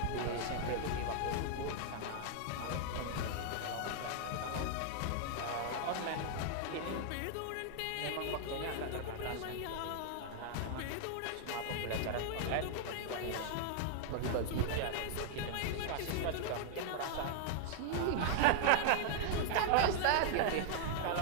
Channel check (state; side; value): different; both; correlation -0.01